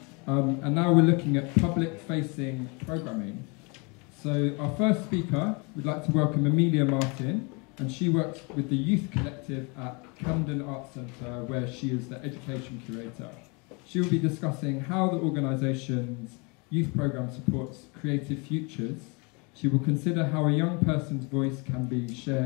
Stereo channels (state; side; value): quieter; right; 30.9 dB